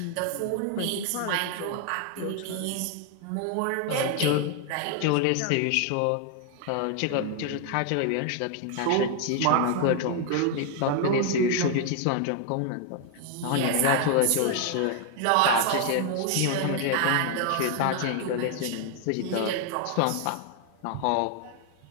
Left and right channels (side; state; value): both; different; correlation 0.00